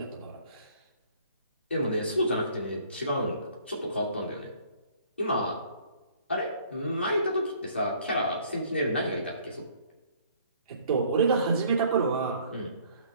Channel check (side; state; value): both; inverted; correlation -0.58